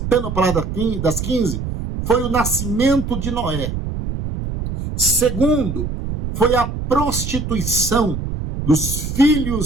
a palavra das 15, foi o nascimento de Noé. Segundo, foi a prostituição dos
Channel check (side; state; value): right; noise; rumble, 5 dB below the sound